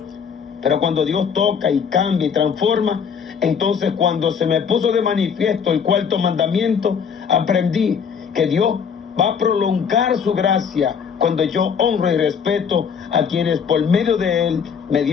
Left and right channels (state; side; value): quieter; right; 6.8 dB